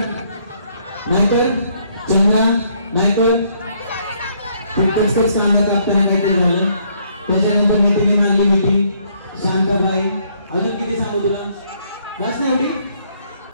नाहीतर चंद्रा, नाहीतर कांदा कापताना काहीतरी झालं. त्याच्यानंतर मैत्रिणी मारली मिठी, शांताबाई. अजून किती सांगू तुला? बस ना एवढी.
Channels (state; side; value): inverted; both; correlation -0.68